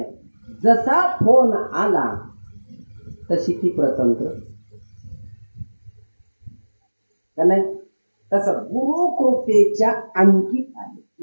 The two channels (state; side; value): inverted; both; correlation -1.00